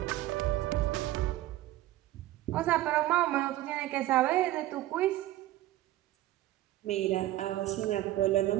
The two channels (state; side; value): quieter; left; 15.2 dB